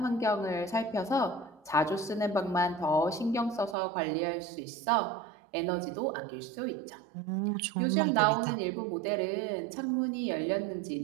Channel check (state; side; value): drops out; left; at 3.8 s